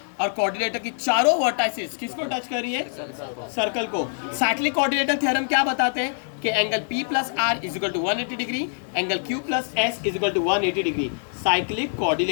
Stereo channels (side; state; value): right; silent; digital silence